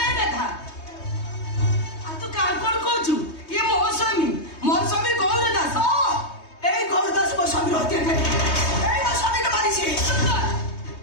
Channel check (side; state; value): right; late; 3.2 ms